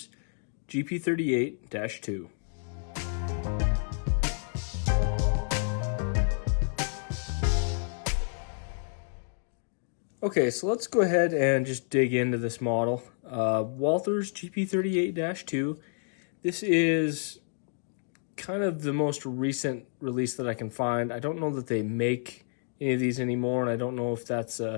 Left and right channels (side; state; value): right; silent; digital silence